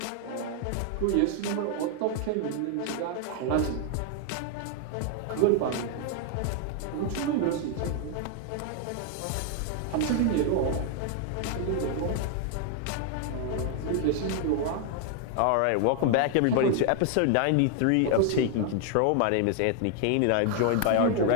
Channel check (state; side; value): different; both; correlation 0.00